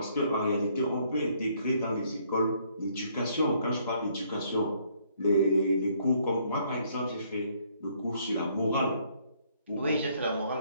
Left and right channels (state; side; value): inverted; both; correlation -0.67